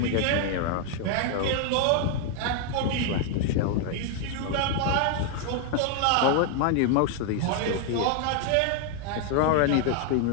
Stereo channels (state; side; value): different; both; correlation 0.00